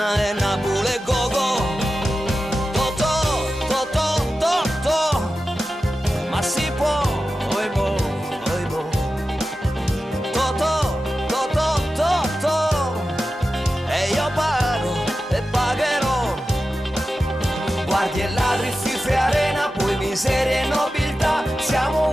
e Napoli e Gogo. Totò, Totò, Totò, ma si può, oi boh, oi boh. Totò, Totò, Totò, e io pago e pagherò. Guardi e ladri, fife, arena, poi miseria e nobiltà. Siamo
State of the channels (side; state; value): both; normal; correlation 0.93